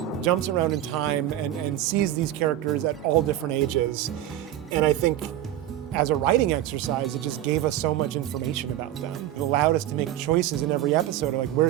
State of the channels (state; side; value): quieter; left; 12.8 dB